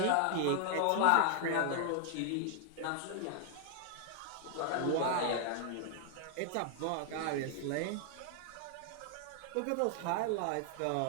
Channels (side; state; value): both; different; correlation 0.00